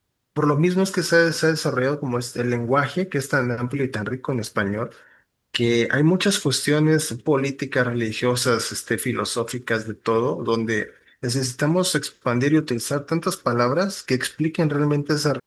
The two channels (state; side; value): identical; both; correlation 1.00